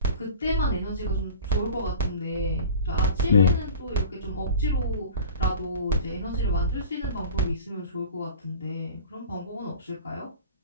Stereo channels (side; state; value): both; inverted; correlation -0.38